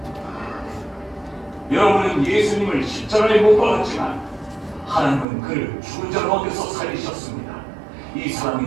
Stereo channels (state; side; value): drops out; left; at 5.2 s